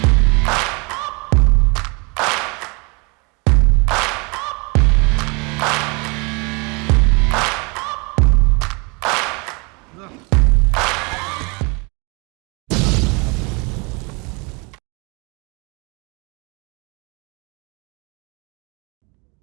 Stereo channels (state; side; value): quieter; left; 30.0 dB